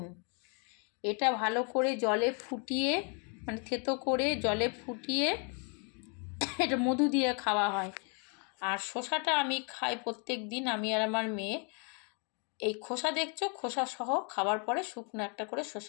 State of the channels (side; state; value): right; quieter; 36.9 dB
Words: এটা ভালো করে জলে ফুটিয়ে, মানে থেতো করে জলে ফুটিয়ে এটা মধু দিয়ে খাওয়া হয়। আর শসাটা আমি খাই প্রত্যেক দিন, আমি আর আমার মেয়ে। এই খোসা দেখছো, খোসা সহ খাওয়ার পরে শুকনো একটা করে